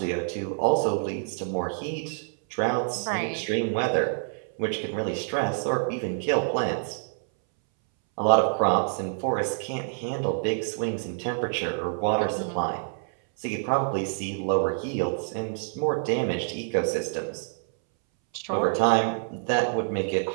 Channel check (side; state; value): left; silent; 60 dB below the other